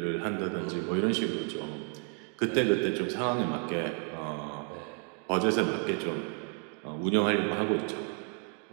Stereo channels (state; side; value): quieter; left; 38.3 dB